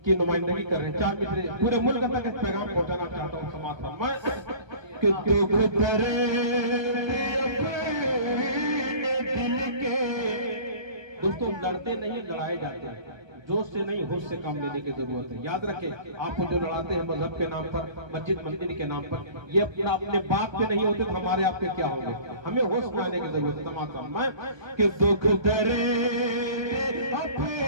की नुमाइंदगी कर रहे हैं 4 मिसरे, पूरे मुल्क तक इस पैगाम पहुंचाना चाहता हूँ। समाज दोस्तों, लड़ते नहीं लड़ाए जाते हैं। जोश से नहीं होश से काम लेने की जरूरत है। याद रखें, आपको जो लड़ाते हैं मजहब के नाम पर, मस्जिद मंदिर के नाम पर, ये अपना अपने बाप के नहीं होते तो हमारे आपके क्या होंगे। हमें होश में आने की जरूरत है। तमाम कि दुख दर्द अपने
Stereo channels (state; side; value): late; left; 1.2 ms